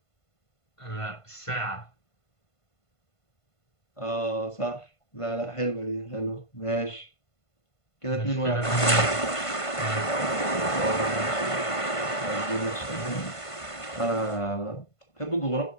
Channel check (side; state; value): right; late; 1.5 ms